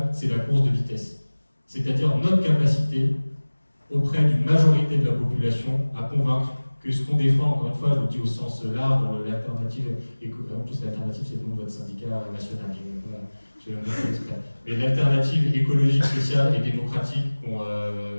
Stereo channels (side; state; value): both; inverted; correlation -1.00